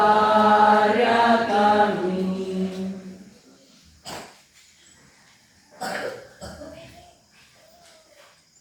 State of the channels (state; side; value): identical; both; correlation 1.00